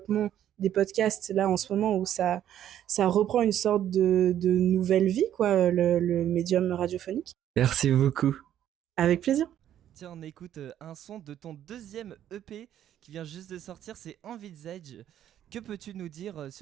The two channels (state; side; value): quieter; left; 11.0 dB